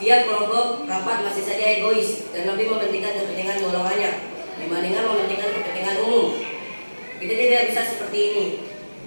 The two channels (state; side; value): inverted; both; correlation -1.00